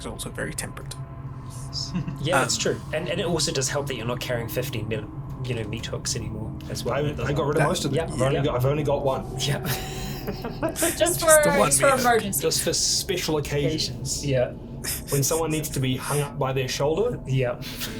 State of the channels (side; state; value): both; identical; correlation 1.00